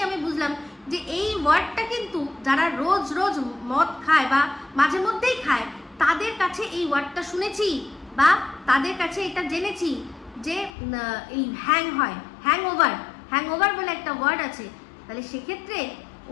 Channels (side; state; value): right; drops out; at 10.7 s